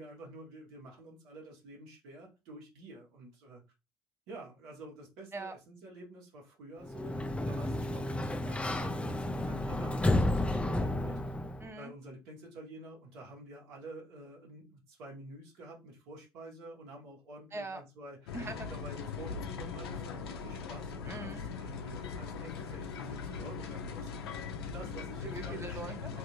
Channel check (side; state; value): both; normal; correlation 0.69